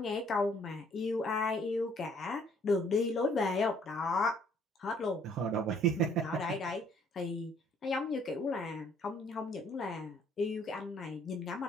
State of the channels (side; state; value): both; normal; correlation 0.62